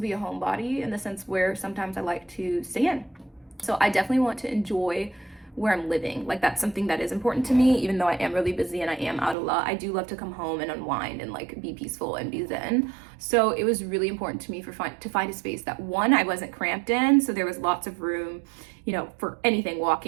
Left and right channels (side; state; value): left; drops out; at 9.3 s